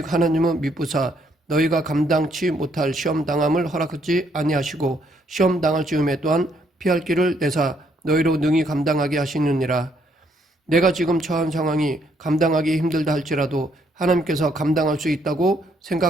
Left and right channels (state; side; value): normal; both; correlation 0.71